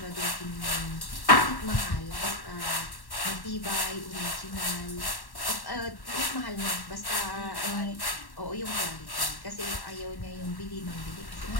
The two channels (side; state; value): right; late; 1.1 ms